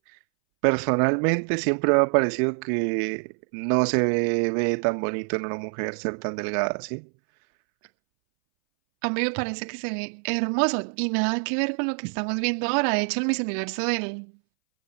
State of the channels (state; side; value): silent; left; 62 dB below the other